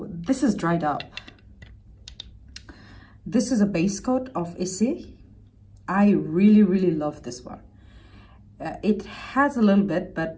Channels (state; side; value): identical; both; correlation 1.00